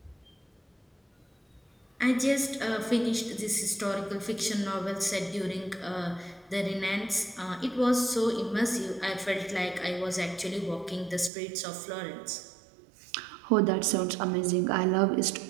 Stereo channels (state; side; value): drops out; left; at 11.3 s